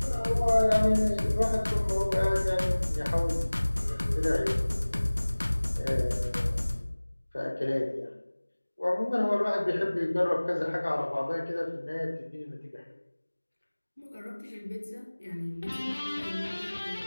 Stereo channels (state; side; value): inverted; both; correlation -1.00